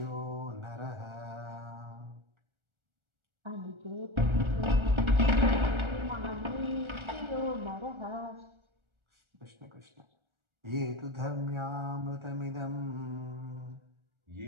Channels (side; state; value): left; late; 1.4 ms